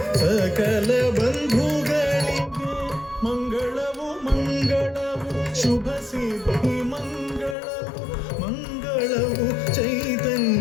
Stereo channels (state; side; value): drops out; right; at 7.6 s